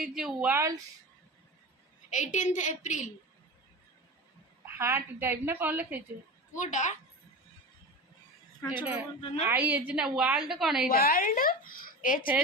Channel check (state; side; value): normal; both; correlation 0.28